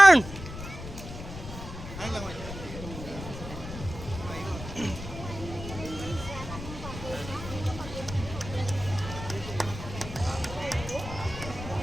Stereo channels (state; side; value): noise; left; rumble, 10 dB below the sound